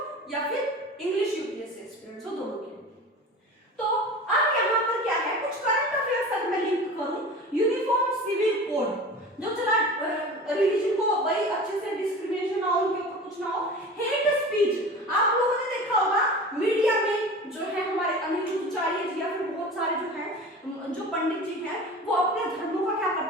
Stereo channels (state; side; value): normal; both; correlation 0.35